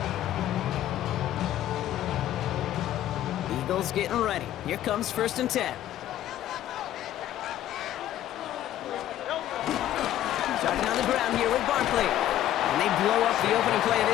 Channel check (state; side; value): quieter; right; 12.6 dB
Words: line. Eagles getting ready. Here comes 1st and 10. Starting on the ground here with Barkley. And they blow up the opening play of